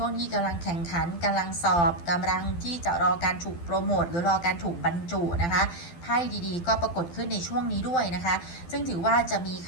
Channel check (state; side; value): late; right; 12 ms